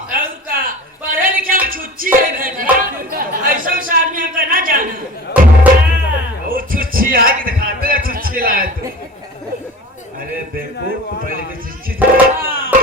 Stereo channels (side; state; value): both; normal; correlation 0.38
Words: और का पढ़े लिखे में छुच्ची है भैया। ऐसा से आदमी हम करना जाना। वो छुच्छी है कि दिखाते हैं छुच्छी लाए तू। अरे देखो पहले की छुच्छी थी।